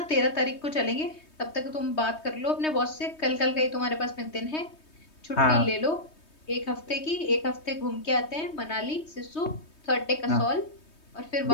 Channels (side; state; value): right; late; 3.2 ms